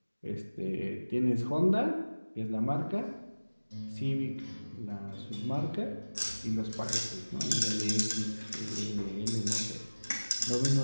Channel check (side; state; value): both; inverted; correlation -1.00